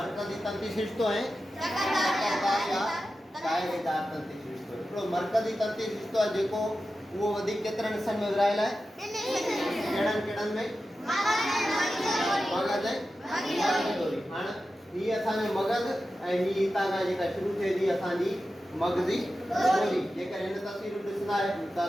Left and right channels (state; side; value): normal; both; correlation 0.92